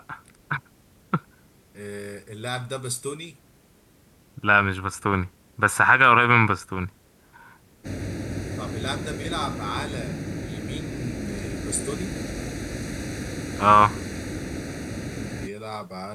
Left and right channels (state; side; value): identical; both; correlation 1.00